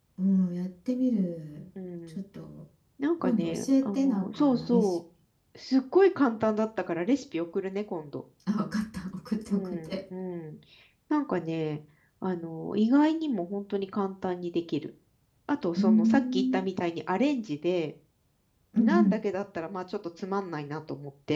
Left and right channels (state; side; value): identical; both; correlation 1.00